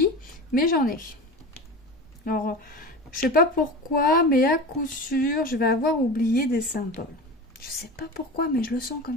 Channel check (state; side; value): normal; both; correlation 0.30